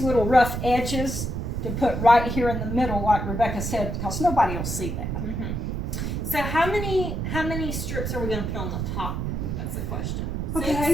little rough edges to put right here in the middle, like Rebecca said, because nobody will see that. So how many strips are we going to put on the top? That's the question.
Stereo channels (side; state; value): right; noise; rumble, 2 dB below the sound